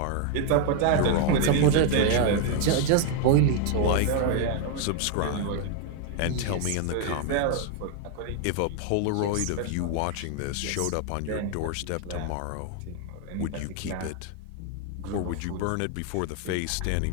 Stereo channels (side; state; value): both; different; correlation 0.00